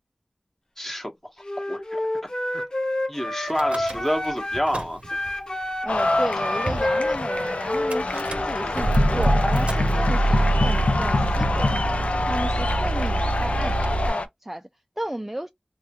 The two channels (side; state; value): both; normal; correlation 0.93